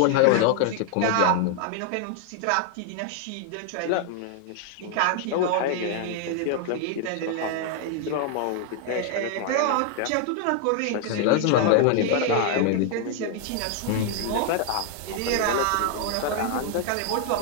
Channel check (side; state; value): both; different; correlation 0.00